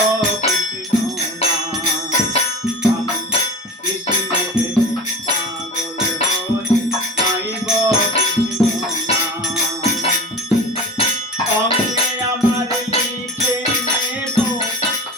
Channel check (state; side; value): normal; both; correlation 0.36